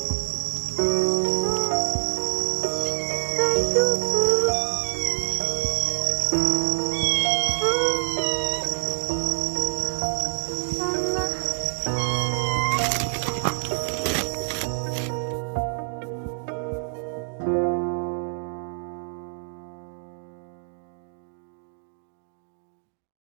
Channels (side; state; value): left; silent; digital silence